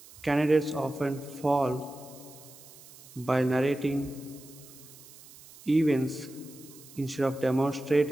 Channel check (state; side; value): noise; right; hiss, 20 dB below the sound